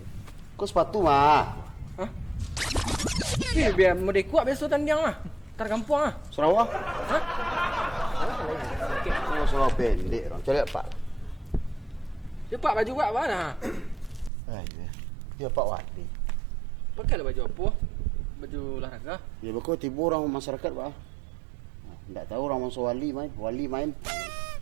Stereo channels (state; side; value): drops out; left; at 14.3 s